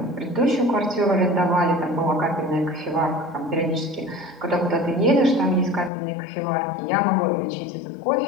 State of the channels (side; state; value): right; drops out; at 5.9 s